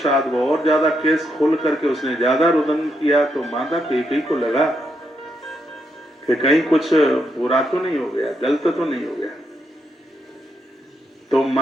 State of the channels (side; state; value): both; normal; correlation 0.80